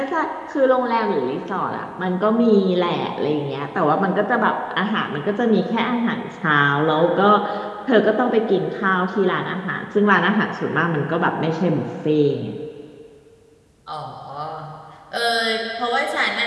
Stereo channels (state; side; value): identical; both; correlation 1.00